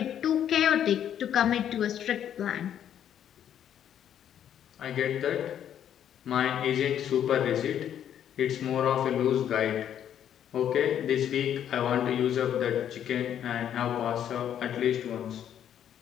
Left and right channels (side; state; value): right; quieter; 9.9 dB